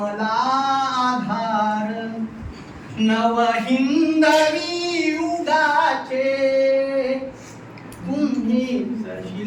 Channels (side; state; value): both; identical; correlation 1.00